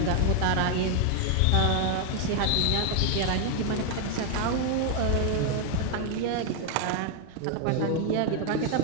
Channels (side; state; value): both; different; correlation 0.01